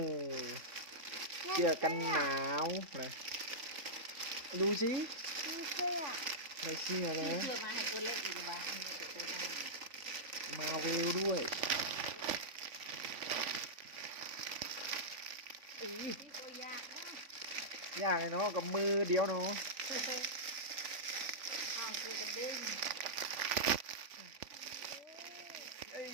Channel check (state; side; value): late; left; 3.5 ms